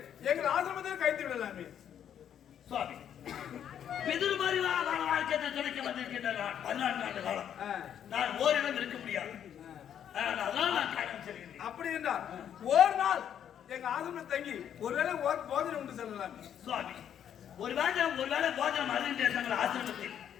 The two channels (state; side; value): quieter; right; 9.4 dB